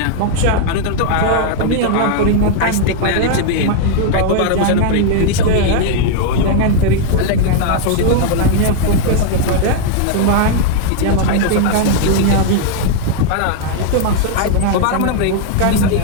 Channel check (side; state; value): both; different; correlation 0.00